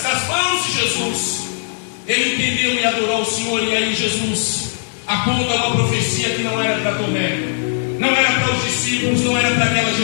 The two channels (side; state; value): right; silent; digital silence